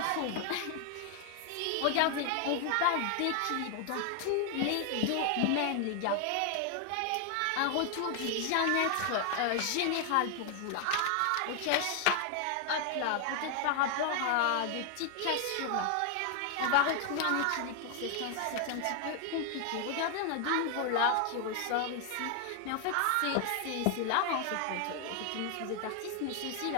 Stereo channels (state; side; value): different; both; correlation 0.00